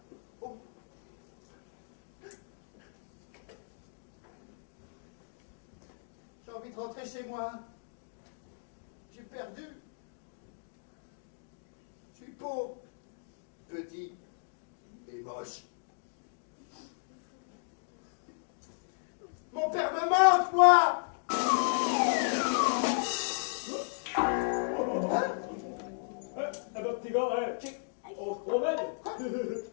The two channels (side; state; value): right; silent; digital silence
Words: Oh. J'ai envie de rentrer chez moi. J'ai perdu. Je suis pauvre. Petit. Et moche. Mon père me manque, moi! Eh ben, petit gars, on se promène.